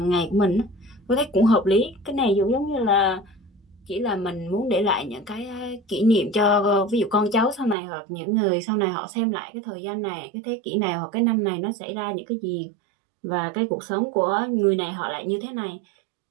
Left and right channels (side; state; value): left; drops out; at 7.8 s